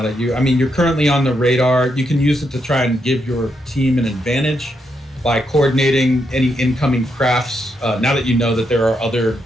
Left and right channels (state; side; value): normal; both; correlation 0.80